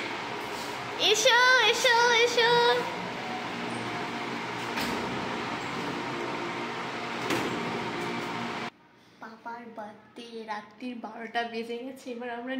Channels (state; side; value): identical; both; correlation 1.00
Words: এসো এসো এসো। পাপার বার্থডে, রাত্রির 12টা বেজে গেছে, এবার আমরা